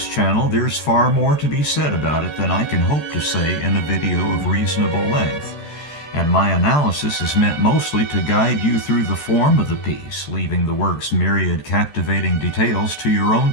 channel, there's far more to be said about it than I can hope to say in a video of reasonable length, and my analysis is meant mostly to guide you through the form of the piece, leaving the work's myriad captivating details to your own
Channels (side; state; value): right; late; 14 ms